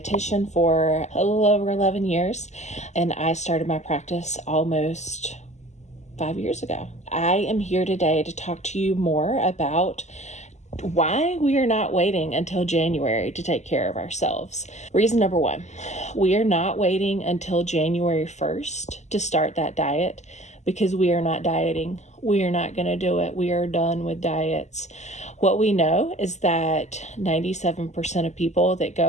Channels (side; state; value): right; late; 0.33 ms